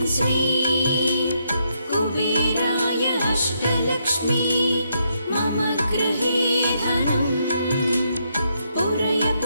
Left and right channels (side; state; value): both; inverted; correlation -0.77